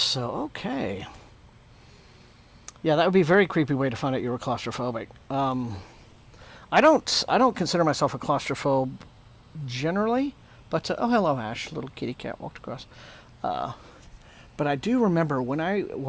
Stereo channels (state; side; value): identical; both; correlation 1.00